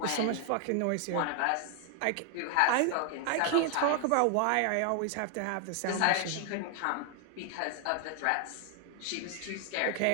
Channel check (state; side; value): different; both; correlation 0.00